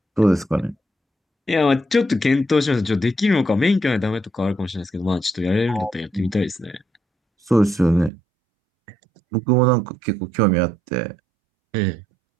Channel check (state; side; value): drops out; left; at 8.1 s